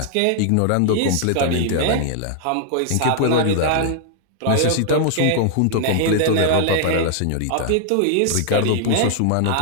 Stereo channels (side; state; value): both; different; correlation 0.00